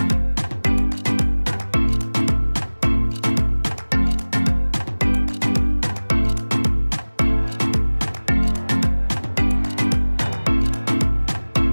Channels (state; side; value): inverted; both; correlation -1.00